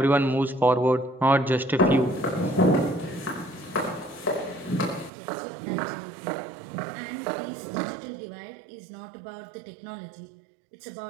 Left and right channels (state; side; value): drops out; left; at 5.1 s